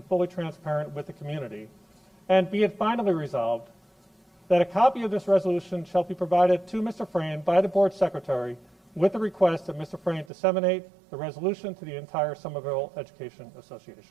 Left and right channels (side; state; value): left; drops out; at 10.3 s